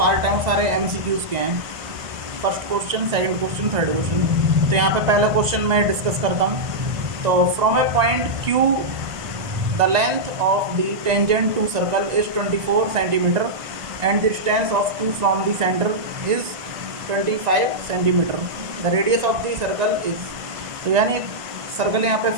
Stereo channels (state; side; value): late; left; 1.5 ms